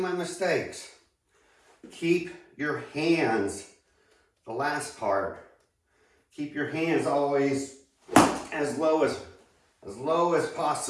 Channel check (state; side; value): identical; both; correlation 1.00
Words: mistakes. Keep your hands, the last part, keep your hands always as low as